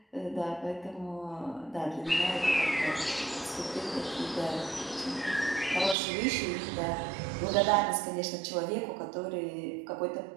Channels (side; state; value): left; drops out; at 6.0 s